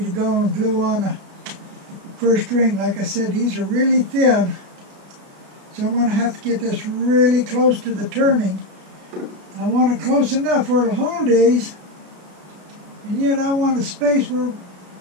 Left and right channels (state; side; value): late; left; 33 ms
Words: to go and glue on the first ring. Like I said, these are really thin, so I'm going to have to get this really close to the turning. I want it close enough where it'll hold these, and yet I want a space where,